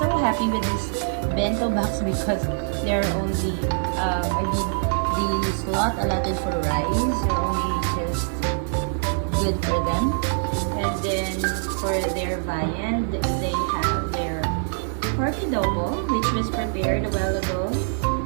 happy with this bento box because they're only the slot allotted for rice are only just good for them. And then for their viand, they have their pork adobo, which was prepared a while ago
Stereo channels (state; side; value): silent; left; digital silence